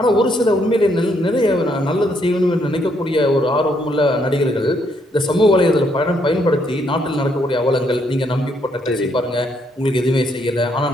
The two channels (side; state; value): both; normal; correlation 0.72